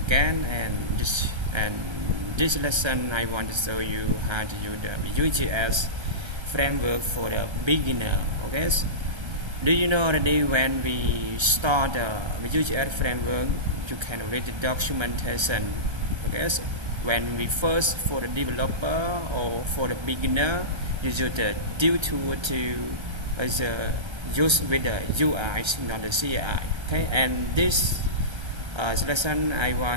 and this lesson I want to show you how to use the Vue.js framework for the beginner. Okay, do you know already when we start the Vue.js framework you can read the documentation. Okay, when we first for the developer or for the beginner you use the div tool to use with the UI, not the CI. Okay, and this lesson I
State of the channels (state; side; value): late; left; 1.3 ms